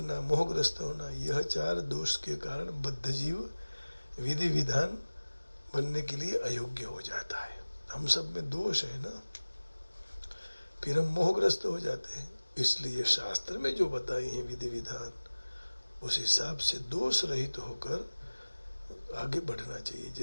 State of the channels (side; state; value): both; inverted; correlation -1.00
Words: मोहग्रस्त होना, यह 4 दोष के कारण बद्धजीव विधि विधान बनने के लिए अयोग्य हो जाता है। हम सब में दोष है ना, फिर हम मोहग्रस्त हो जाते हैं। इसलिए शास्त्र में जो बताए हैं विधि विधान, उस हिसाब से दोष रहित होकर आगे बढ़ना चाहिए।